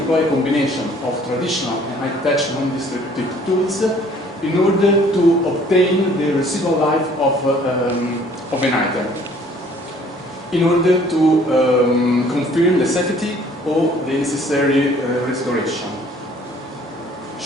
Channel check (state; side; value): normal; both; correlation 0.57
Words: a combination of traditional and high-tech non-destructive tools in order to obtain the residual life of an item, in order to confirm the safety or the necessary restoration.